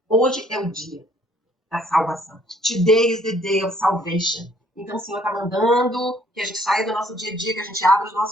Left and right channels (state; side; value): normal; both; correlation 0.62